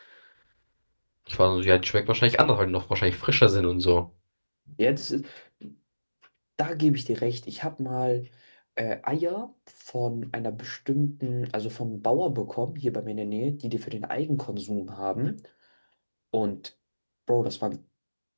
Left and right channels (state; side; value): inverted; both; correlation -1.00